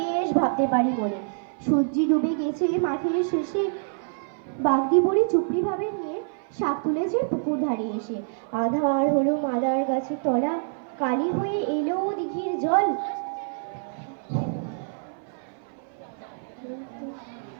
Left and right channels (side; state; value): left; silent; 57 dB below the other